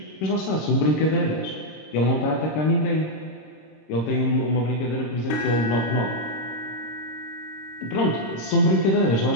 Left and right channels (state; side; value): late; right; 26 ms